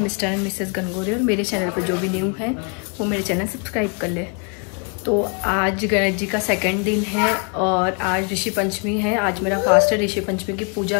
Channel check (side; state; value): right; quieter; 37.9 dB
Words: and missus Gangori. और मेरे channel पर जो भी न्यू है वो मेरे चैनल सब्सक्राइब कर ले। तो आज गणेश जी का सेकंड दिन है और आज ऋषि पंचमी है। आज मेरा फास्ट है। ऋषि पंचमी की